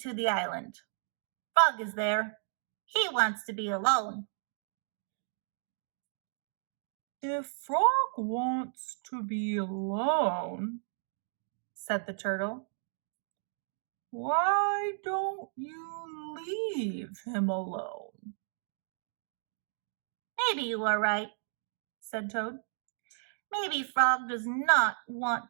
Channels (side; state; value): left; silent; digital silence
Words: the island. Frog is there. He wants to be alone." "If Frog wants to be alone," said the turtle, "why don't you leave him alone?" "Maybe you are right," said Toad. "Maybe Frog does not